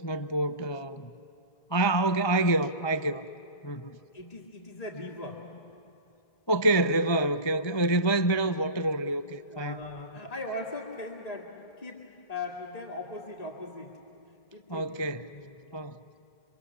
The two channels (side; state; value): right; late; 1.2 ms